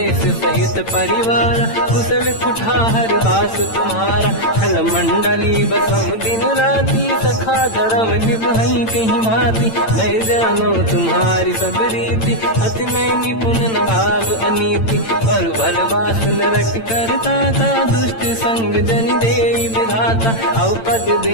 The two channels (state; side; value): late; right; 8.9 ms